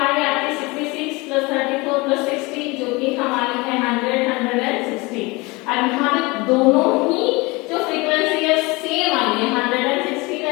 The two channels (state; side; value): quieter; right; 24.5 dB